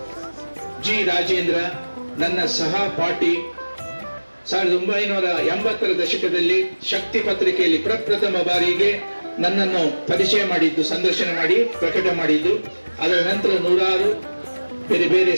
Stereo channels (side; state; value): both; inverted; correlation -1.00